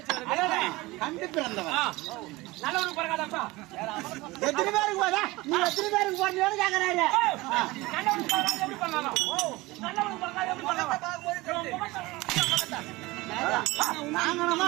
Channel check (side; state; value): left; quieter; 21.0 dB